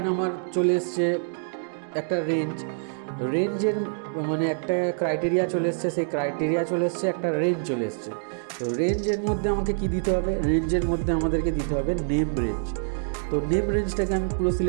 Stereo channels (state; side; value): silent; left; digital silence